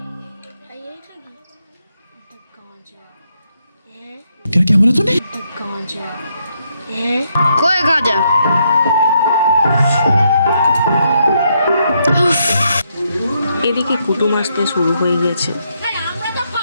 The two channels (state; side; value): inverted; both; correlation -0.77